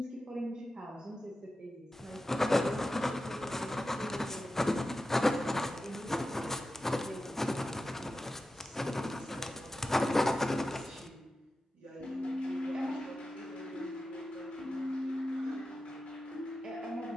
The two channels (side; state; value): both; normal; correlation 0.93